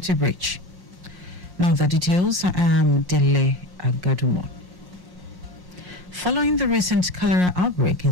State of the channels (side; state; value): right; late; 1.1 ms